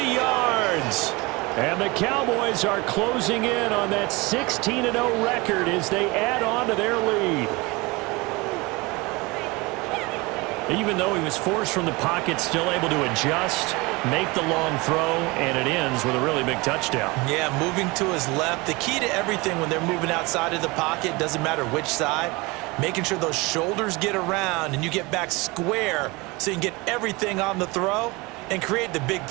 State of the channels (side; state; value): left; quieter; 24.5 dB